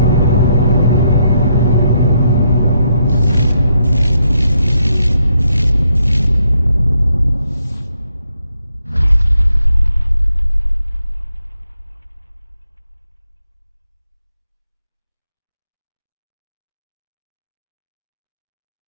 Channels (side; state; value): both; inverted; correlation -0.77